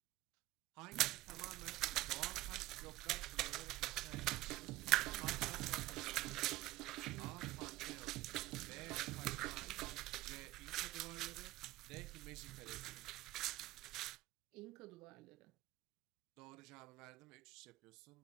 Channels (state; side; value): quieter; left; 17.5 dB